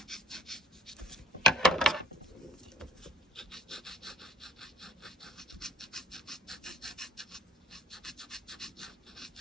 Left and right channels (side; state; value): both; normal; correlation 0.48